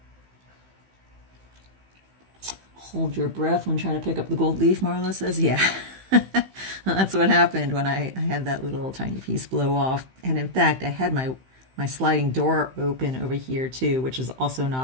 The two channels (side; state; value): left; late; 15 ms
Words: Hold your breath when trying to pick up the gold leaf, Marla says. Yeah, that's what happened when I had that little tiny piece blow off. And in fact, I had my sliding door open over here too, which is also